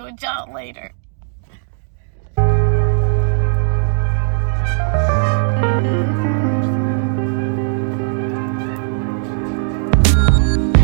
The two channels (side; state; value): left; silent; 68 dB below the other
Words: with John later.